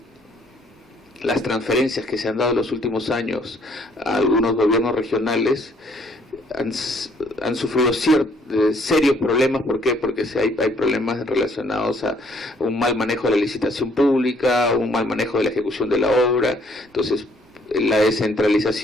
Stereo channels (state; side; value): normal; both; correlation 0.64